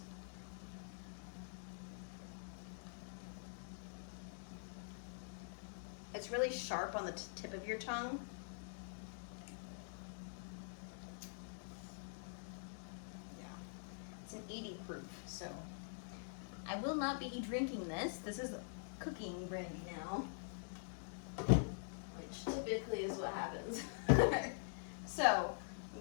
It's really sharp on the tip of your tongue. Yeah, it's an 80 proof, so I will not be drinking this. This is cooking brandy now, which typically is what happens. So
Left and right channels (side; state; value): right; silent; digital silence